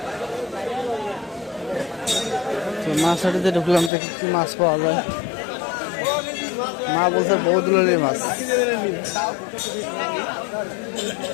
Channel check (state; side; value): drops out; right; at 3.9 s